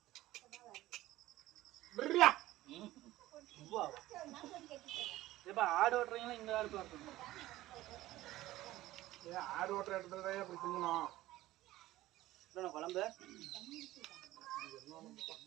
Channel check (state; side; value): quieter; left; 16.2 dB